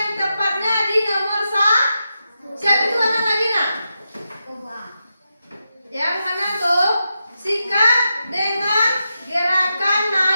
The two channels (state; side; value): inverted; both; correlation -0.88